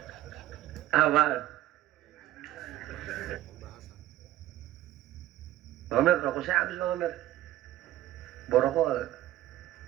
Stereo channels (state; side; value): quieter; left; 14.5 dB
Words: Apa? Bang Mer, rokok saya habis Bang Mer. Borokok.